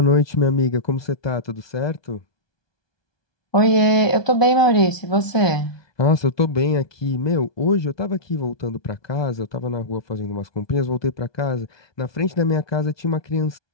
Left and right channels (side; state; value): right; late; 1.2 ms